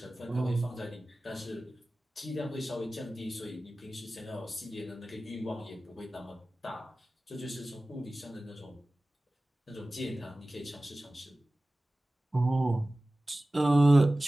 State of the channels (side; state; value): both; normal; correlation 0.97